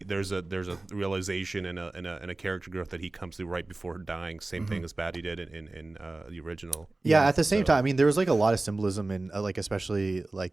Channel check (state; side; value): quieter; left; 3.0 dB